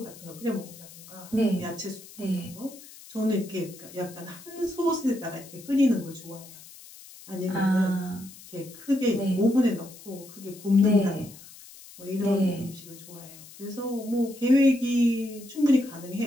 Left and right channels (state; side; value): noise; left; hiss, 19 dB below the sound